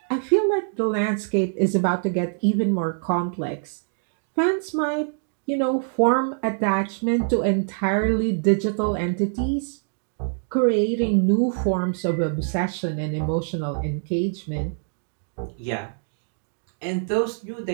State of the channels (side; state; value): left; silent; digital silence